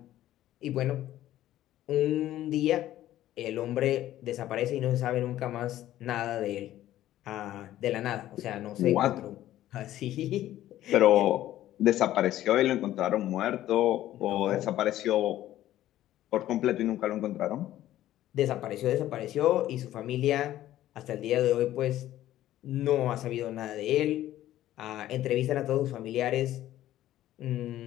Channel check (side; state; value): right; quieter; 13.6 dB